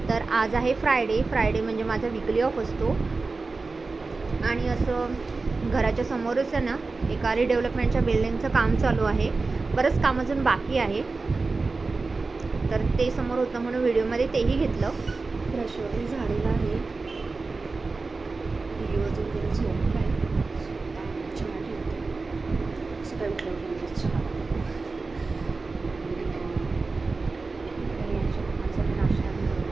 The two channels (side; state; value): left; quieter; 3.9 dB